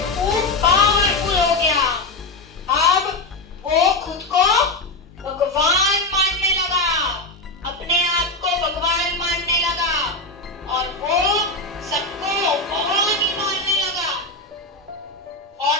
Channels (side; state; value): right; quieter; 3.1 dB